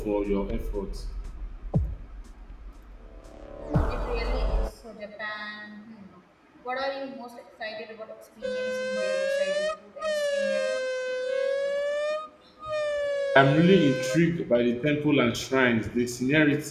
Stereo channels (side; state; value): both; identical; correlation 1.00